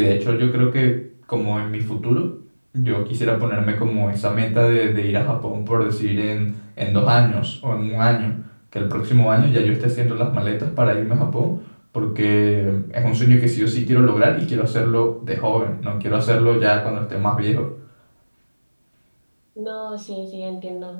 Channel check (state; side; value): inverted; both; correlation -1.00